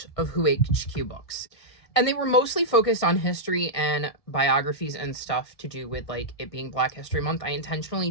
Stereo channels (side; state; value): right; late; 1.6 ms